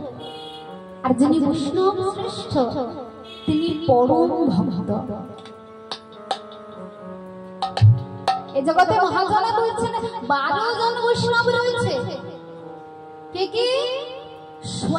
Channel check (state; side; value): identical; both; correlation 1.00